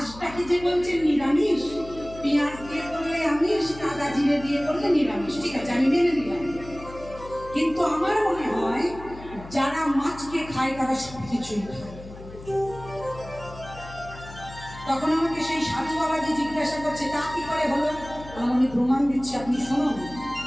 যে বলছেন নিরামিষ, পেঁয়াজ দিয়ে করলে আমিষ, আদা জিরে দিয়ে করলে নিরামিষ, ঠিক আছে আমি মেনে নিলাম, কিন্তু আমার মনে হয় যারা মাছকে খায় তারা সবকিছুই খায়। তখন আমাকে সেই সাধু বাবাজি জিজ্ঞাসা করছে তা কি করে হলো? আমি প্রমাণ দিচ্ছি, আপনি শুনুন।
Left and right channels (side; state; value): left; noise; hum, 16 dB below the sound